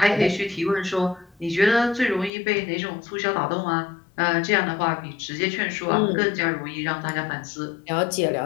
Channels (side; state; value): right; drops out; at 2.3 s